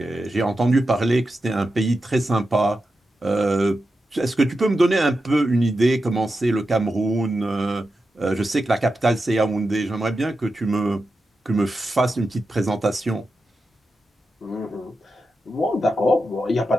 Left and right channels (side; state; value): both; normal; correlation 0.90